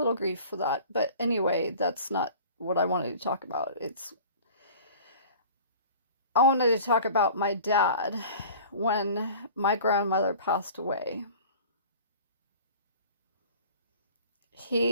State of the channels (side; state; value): both; inverted; correlation -0.43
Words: grief for that. But anyway, that's not what I wanted to talk about. I wanted to talk about my dad when my grandmother passed away.